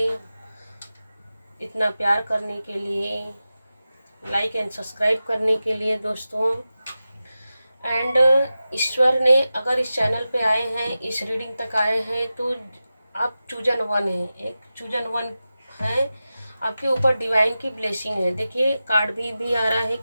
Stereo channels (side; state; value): both; inverted; correlation -0.94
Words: इतना प्यार करने के लिए, लाइक एंड सब्सक्राइब करने के लिए दोस्तों। एंड ईश्वर ने अगर इस चैनल पे आए हैं, इस रीडिंग तक आए हैं, तो आप चूजन वन हैं, एक चूजन वन है। आपके ऊपर डिवाइन की ब्लेसिंग है। देखिए, कार्ड भी आ रहा है